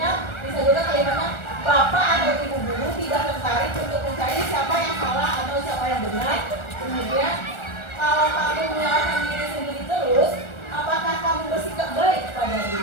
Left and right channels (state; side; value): late; right; 1.4 ms